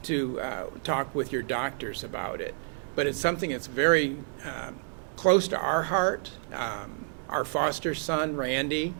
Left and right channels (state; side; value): silent; left; digital silence